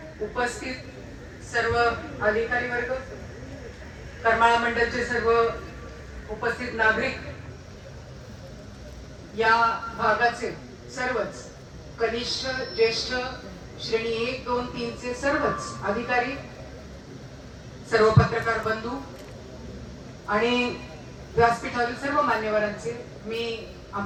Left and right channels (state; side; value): identical; both; correlation 1.00